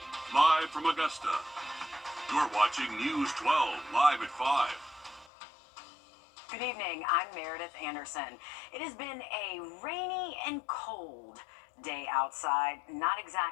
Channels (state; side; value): drops out; right; at 5.3 s